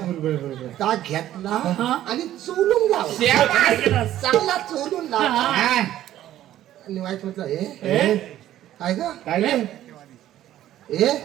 बरोबर ता घेतला हा. आणि चोलून लावला काय केलास? चांगला चोलून लावला हा. आणि वाईट म्हटलं ए? काय ग काय रे ए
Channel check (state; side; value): quieter; left; 12.9 dB